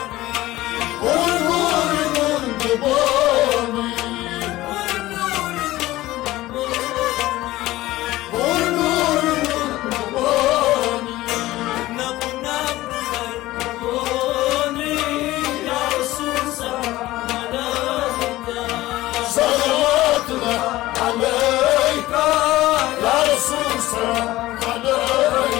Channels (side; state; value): right; quieter; 17.1 dB